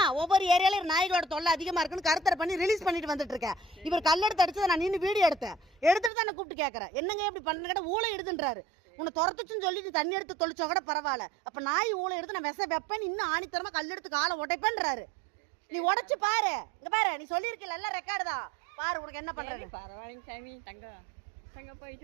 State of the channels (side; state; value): left; drops out; at 6.1 s